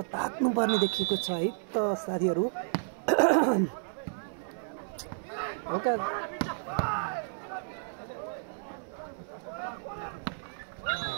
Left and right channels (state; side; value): silent; left; digital silence